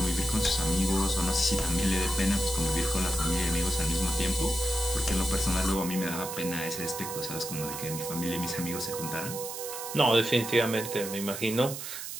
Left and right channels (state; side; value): noise; right; hiss, 8 dB below the sound